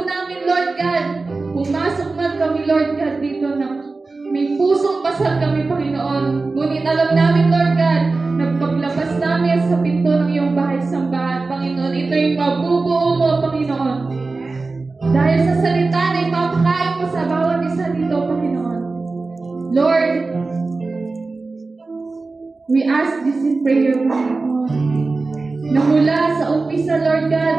namin, Lord God, pumasok man kami, Lord God, dito na may pusong pasal kami, Panginoon. Ngunit alam namin, Lord God, nagpaglabas namin sa pinto ng iyong bahay-sambahan, Panginoon. Ito'y mabubuo mo, Panginoon. Dahil sa salita na ipapakain mo sa bawat isa dito, Panginoon. Lord, we ask this in prayer, Panginoon. Na mula sa umpisa, Lord God,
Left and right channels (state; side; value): quieter; left; 3.7 dB